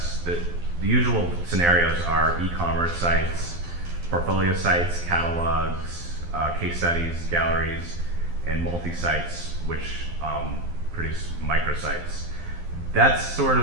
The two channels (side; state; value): left; late; 12 ms